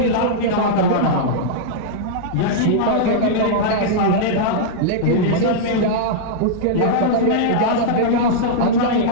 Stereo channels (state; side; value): different; both; correlation -0.02